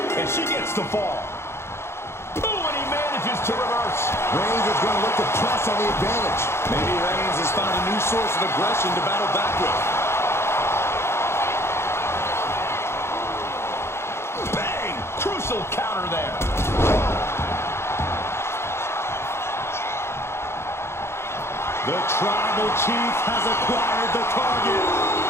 and she gets the fall. Oh, and he manages to reverse. Reigns is going to look to press on the advantage. Maybe Reigns has found a new source of aggression to battle back with. Bang! Crucial counter there. The Tribal Chief has acquired the target.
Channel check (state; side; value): late; right; 0.12 ms